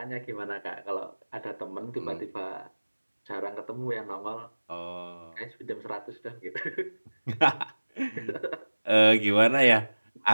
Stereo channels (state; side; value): inverted; both; correlation -1.00